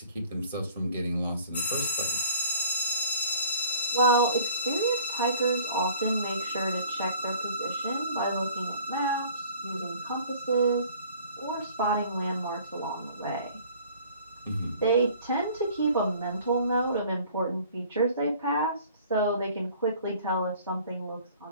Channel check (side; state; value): both; inverted; correlation -0.50